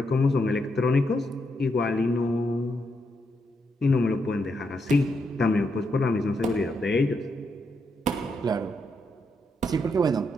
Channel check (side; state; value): both; normal; correlation 0.80